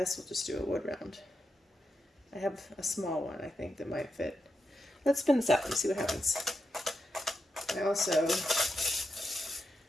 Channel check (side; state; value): both; normal; correlation 0.86